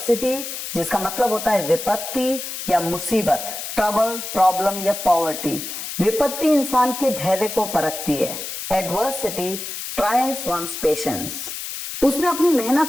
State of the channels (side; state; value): left; noise; hiss, 7 dB below the sound